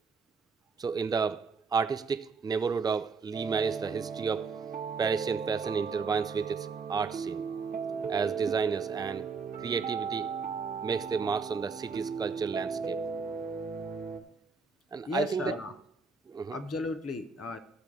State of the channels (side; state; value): left; quieter; 4.8 dB